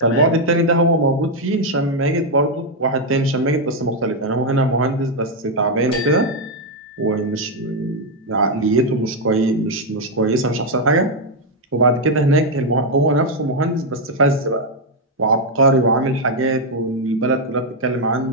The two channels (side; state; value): both; normal; correlation 0.01